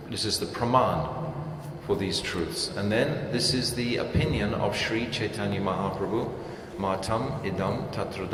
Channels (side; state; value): both; identical; correlation 1.00